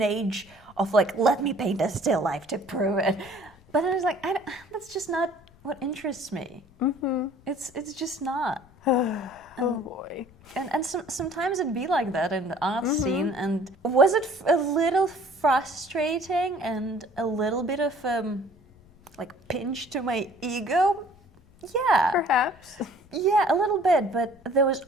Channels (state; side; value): noise; left; rumble, 27 dB below the sound